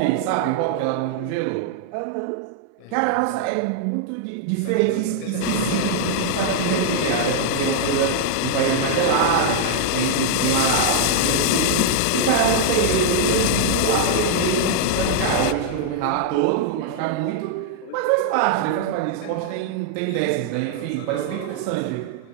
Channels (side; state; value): both; different; correlation -0.01